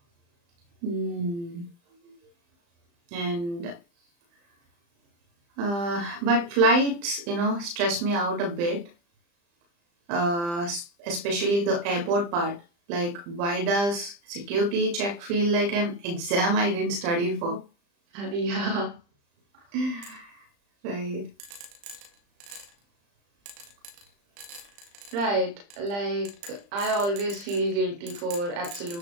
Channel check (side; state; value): left; late; 35 ms